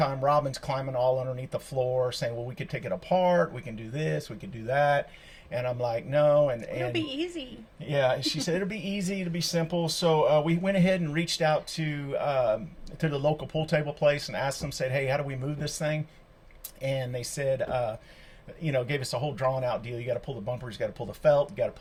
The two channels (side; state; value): both; identical; correlation 1.00